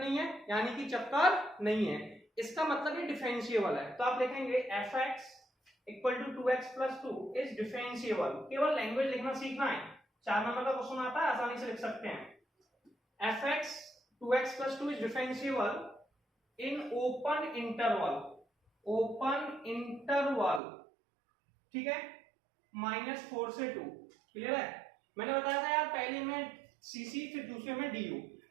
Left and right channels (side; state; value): left; drops out; at 20.6 s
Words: है यानी कि चक्कर नहीं है, इसका मतलब ये डिफरेंशिएबल है। तो आप लिखेंगे fx equal to 2x plus 2 is differentiable. केवल लैंग्वेज लिखना सीखना है, 4 नंबर का क्वेश्चन आता है, आसानी से लिख सकते हैं। fx 2x plus 2 is differentiable in open interval, ठीक है, -4 से 2। क्लियर है। मैंने बताया था यार पहले में सीसी फिर दूसरे में डी,